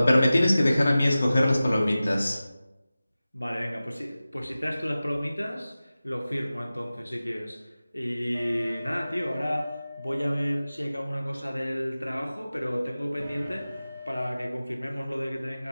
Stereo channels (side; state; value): both; inverted; correlation -0.96